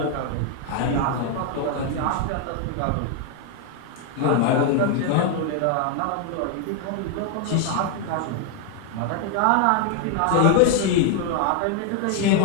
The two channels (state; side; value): different; both; correlation 0.00